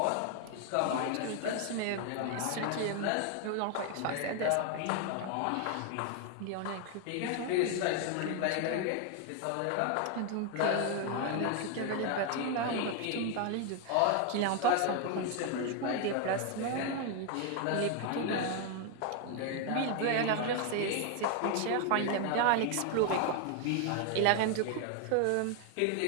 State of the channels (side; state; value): both; different; correlation 0.01